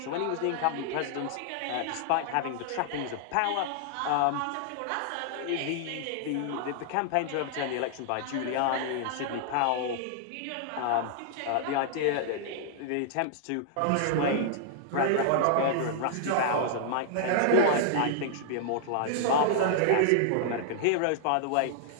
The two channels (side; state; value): both; different; correlation -0.01